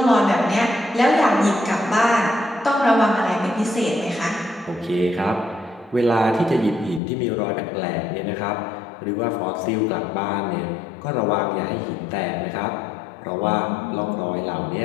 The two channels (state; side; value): drops out; right; at 7.0 s